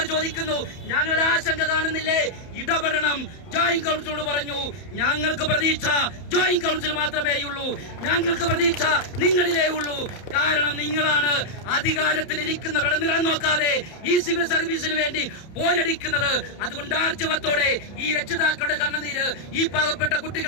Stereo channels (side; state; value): right; late; 31 ms